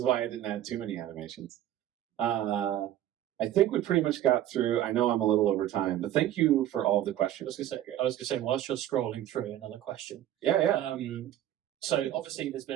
why I didn't add too many animations. I think we pretty much got through. I know I'm a little over time, but thank you for all the questions. I was gonna say, whilst you're scrolling through, another question. Yeah. So obviously, there's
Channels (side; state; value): left; quieter; 12.3 dB